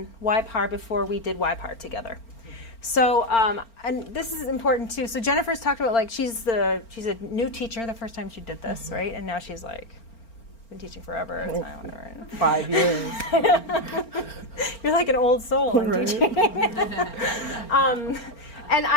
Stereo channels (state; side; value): late; right; 4.4 ms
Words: YPAR before we did YPAR together. So, and this is important too. So Jennifer's talked about like she's a new teacher the first time she did this, right? And now she's like been teaching forever. It's fine, whatever. 5 years. You're like an old soul in teaching. And